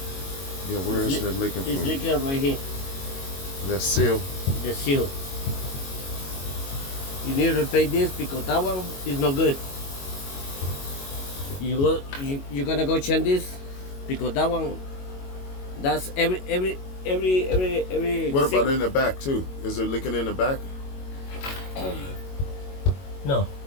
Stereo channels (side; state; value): right; late; 22 ms